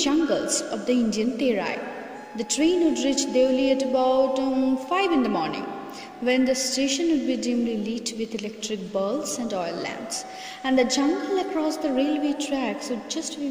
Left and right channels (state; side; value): identical; both; correlation 1.00